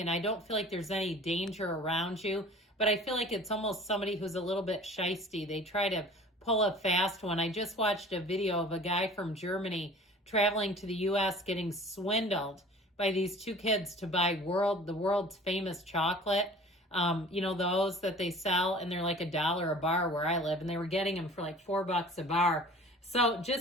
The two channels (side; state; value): both; normal; correlation 0.45